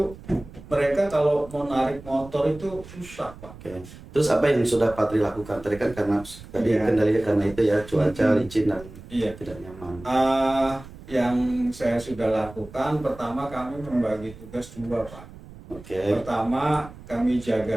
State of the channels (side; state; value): right; noise; rumble, 18 dB below the sound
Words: mereka kalau mau narik motor itu susah Pak. Oke. Terus apa yang sudah Pak Tri lakukan? Tadi kan karena tadi kendalinya karena itu ya, cuaca licin dan tidak nyaman. Yang saya sudah lakukan, pertama kami membagi tugas dua Pak. Oke. Pertama kami